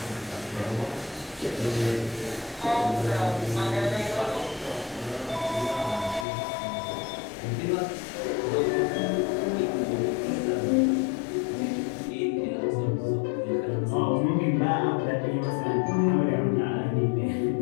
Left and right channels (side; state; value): right; drops out; at 6.2 s